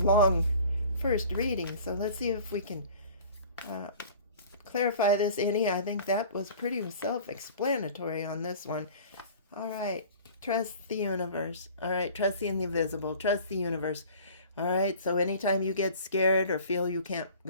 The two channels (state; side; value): inverted; both; correlation -0.44